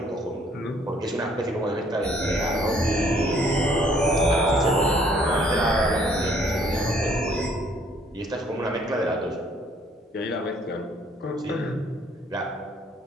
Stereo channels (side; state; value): both; normal; correlation 0.62